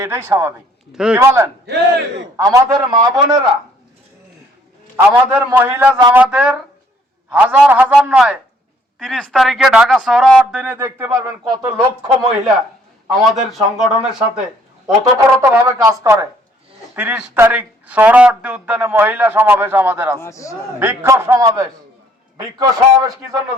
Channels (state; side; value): normal; both; correlation 0.63